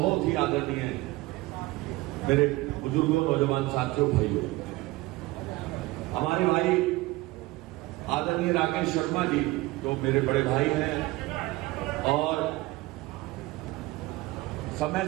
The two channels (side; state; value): left; quieter; 20.0 dB